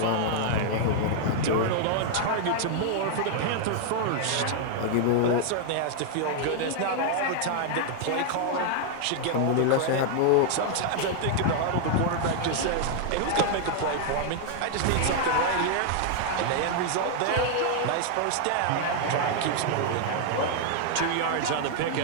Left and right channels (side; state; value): both; different; correlation -0.01